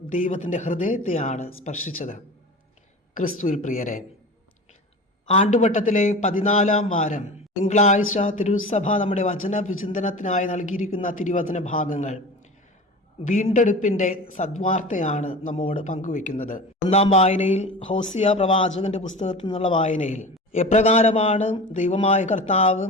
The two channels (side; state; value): both; normal; correlation 0.33